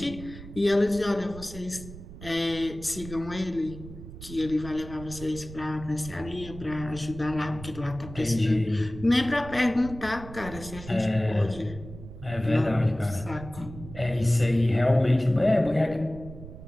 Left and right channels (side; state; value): right; noise; rumble, 14 dB below the sound